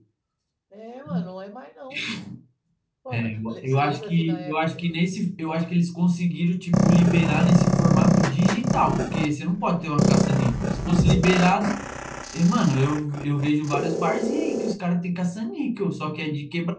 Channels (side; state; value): both; identical; correlation 1.00